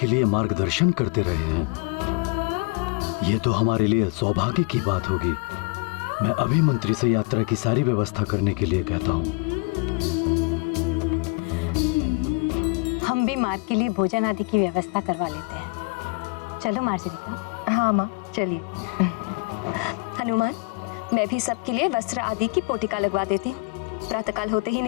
लिए मार्गदर्शन करते रहे हैं। ये तो हमारे लिए सौभाग्य की बात होगी। मैं अभी मंत्री से यात्रा की सारी व्यवस्था करने के लिए कहता हूँ। हम भी मार्ग के लिए भोजन आदि की व्यवस्था करवा लेते हैं। चलो मार्जरी। हाँ माँ, चलिए। हनुमान, मैं भी सबके लिए वस्त्र आदि की पोटिका लगवा देती हूँ। प्रातःकाल होते ही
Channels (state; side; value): quieter; right; 27.9 dB